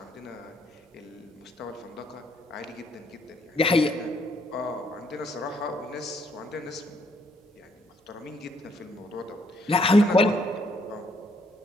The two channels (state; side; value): normal; both; correlation 0.69